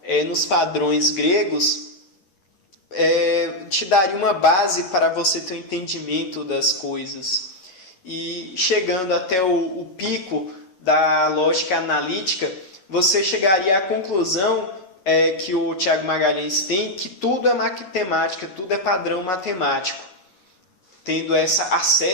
nos padrões gregos, te daria uma base para você ter um entendimento das coisas. E chegando até o pico da lógica analítica, você chegaria à conclusão que o Tiago Magalhães tem, que tudo é matemática, tudo é padrão matemático, tendo essa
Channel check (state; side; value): late; right; 11 ms